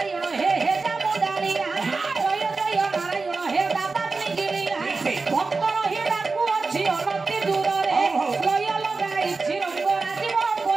হে হেজামদারিয়া জয় জয় নারায়ণ হে দাবাগ্নি গিরিয়া ভক্ত রহি ডাকু অছি অনতি দূରରେ জয় লগাইছি রঙ্গ রাজীব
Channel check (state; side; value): quieter; left; 4.0 dB